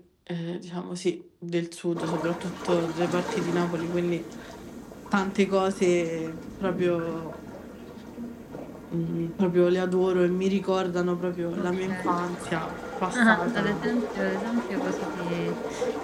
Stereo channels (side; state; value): both; identical; correlation 1.00